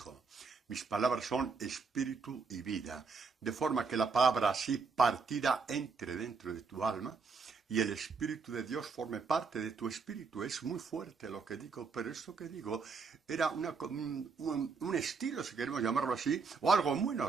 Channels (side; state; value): left; quieter; 4.9 dB